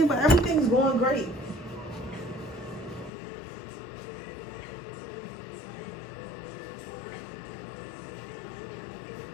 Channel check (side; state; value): right; drops out; at 3.1 s